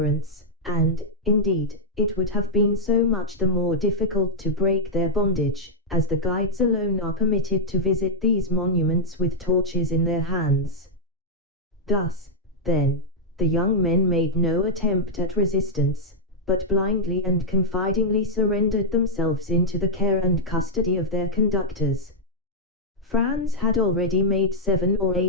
and, indeed, it would have been so much the more difficult to break their bondage, as the guides alone are permitted to visit these monuments with torches in their hands. Thus, then, the young men made no attempt at resistance, but blindly and confidingly surrendered themselves into the care and custody of their conductors. Franz had already made 7 or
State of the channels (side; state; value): both; normal; correlation -0.05